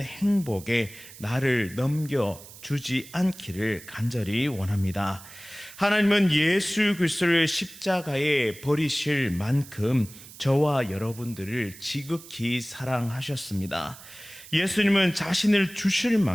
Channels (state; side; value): noise; right; hiss, 18 dB below the sound